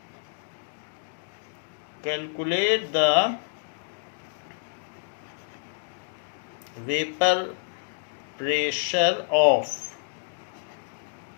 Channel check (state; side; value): silent; right; digital silence